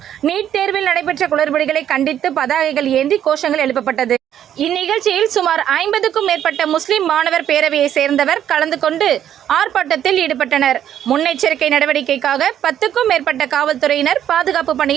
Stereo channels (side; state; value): left; quieter; 10.4 dB